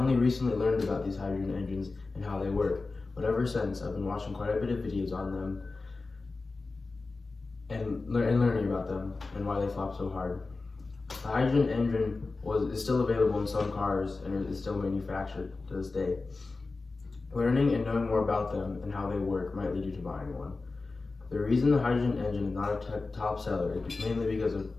recently learned about these hydrogen engines and how they work, but ever since I've been watching quite a bit of videos on them and learning about them and why they flop so hard. The hydrogen engine is still available in some cars and is still manufactured to this day. Learning and knowing more about them and how they work might lead you to buying one. The reason the hydrogen engine is not a top seller is mainly because of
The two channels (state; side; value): quieter; right; 3.7 dB